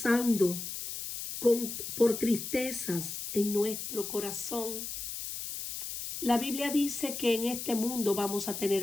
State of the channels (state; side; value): noise; left; hiss, 6 dB below the sound